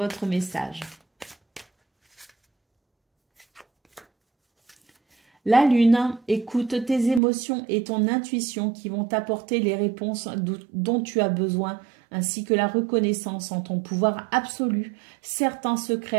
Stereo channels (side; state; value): left; drops out; at 7.2 s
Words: message. La lune, écoute tes émotions et ton intuition qui vont t'apporter les réponses dont tu as besoin, ainsi que la reconnaissance en ton pouvoir absolu. Certains